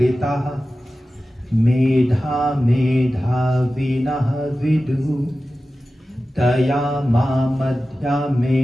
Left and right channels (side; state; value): both; normal; correlation 0.94